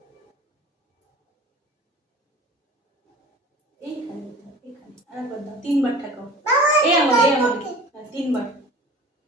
এইখানে এখানে আরেকবার দাও, 3বার ঠেকাও। এই আমার হ্যাঁ 3বার।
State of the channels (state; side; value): normal; both; correlation 0.41